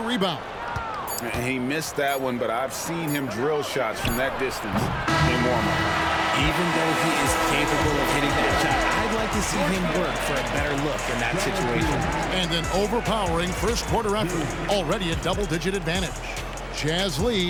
rebound. He missed that one, but I've seen him drill shots from that distance in warm-up. Even though he is capable of hitting that shot, I'd like to see him work for a better look in that situation. And an overpowering first quarter effort. Already a double-digit advantage. Jazz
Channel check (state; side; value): identical; both; correlation 1.00